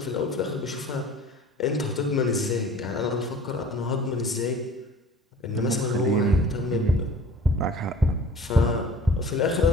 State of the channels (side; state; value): both; normal; correlation 0.46